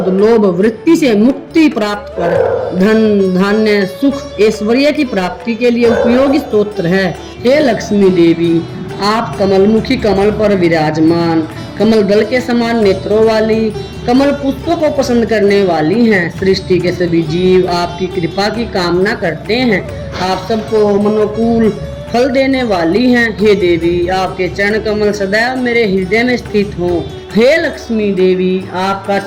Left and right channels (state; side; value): identical; both; correlation 1.00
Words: लोभ, वृत्ति से मुक्ति प्राप्त कर धन, धान्य, सुख, ऐश्वर्य की प्राप्ति के लिए उपयोगी स्तोत्र है। हे लक्ष्मी देवी, आप कमलमुखी कमल पर विराजमान, कमल दल के समान नेत्रों वाली, कमल पुष्पों को पसंद करने वाली हैं। सृष्टि के सभी जीव आपकी कृपा की कामना करते हैं। आप सबको मनोकूल फल देने वाली हैं। हे देवी, आपके चरण कमल सदैव मेरे हृदय में स्थित हों। हे लक्ष्मी देवी, आपका